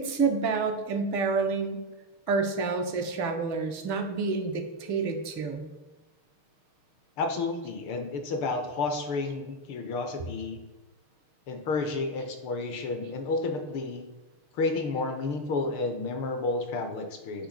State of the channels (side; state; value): right; late; 6.5 ms